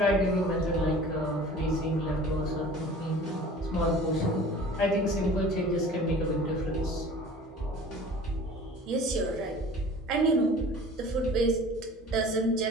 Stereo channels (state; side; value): normal; both; correlation 0.44